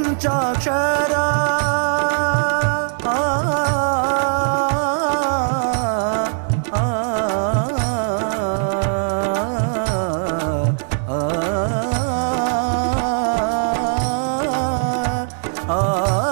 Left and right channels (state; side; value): silent; left; 66 dB below the other